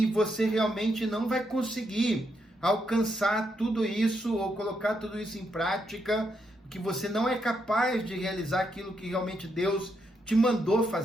você realmente não vai conseguir alcançar tudo isso ou colocar tudo isso em prática, que você não é capaz de realizar aquilo que realmente Deus te mandou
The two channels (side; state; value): both; normal; correlation 0.79